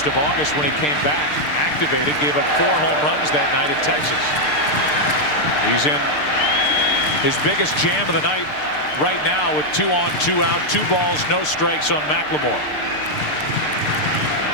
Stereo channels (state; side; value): late; right; 6.7 ms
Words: of August when he came back, activated, gave up 4 home runs that night in Texas. He's in his biggest jam of the night right now with 2 on, 2 out, 2 balls, no strikes on McLemore.